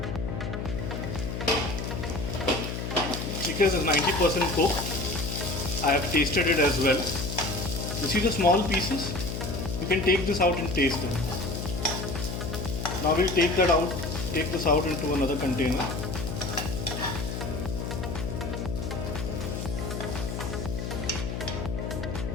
Chicken is 90% cooked. I have tasted it as well. You see the small pieces? You can take this out and taste them. Now we'll take this out into another container.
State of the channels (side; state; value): left; noise; hum, 4 dB below the sound